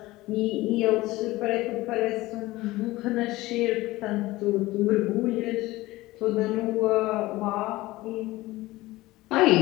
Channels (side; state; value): right; quieter; 18.8 dB